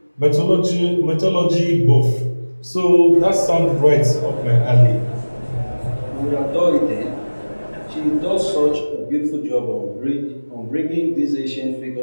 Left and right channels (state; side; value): inverted; both; correlation -1.00